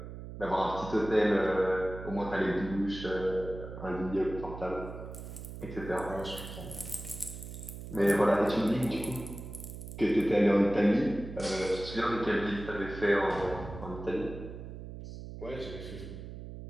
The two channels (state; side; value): noise; right; hum, 11 dB below the sound